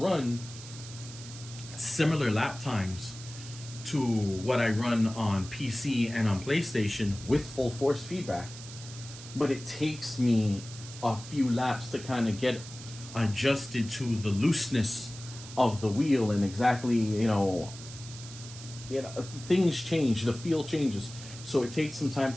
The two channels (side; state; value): right; noise; hiss, 14 dB below the sound